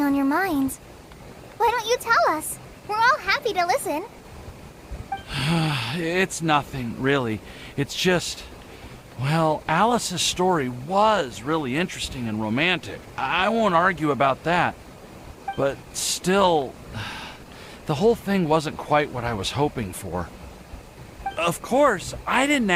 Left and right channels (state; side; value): identical; both; correlation 1.00